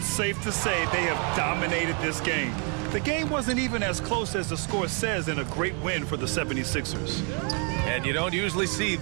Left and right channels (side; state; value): left; quieter; 37.3 dB